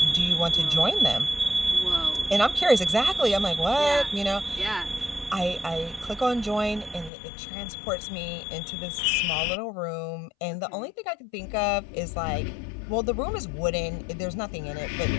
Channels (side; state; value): right; drops out; at 7.1 s